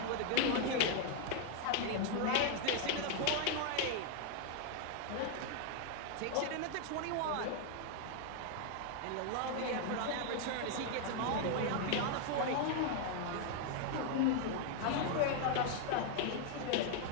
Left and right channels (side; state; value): both; different; correlation 0.00